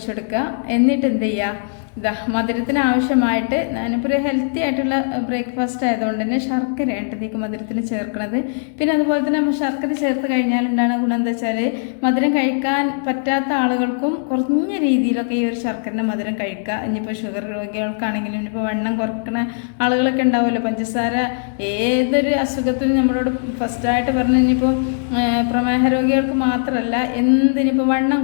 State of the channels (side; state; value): right; silent; digital silence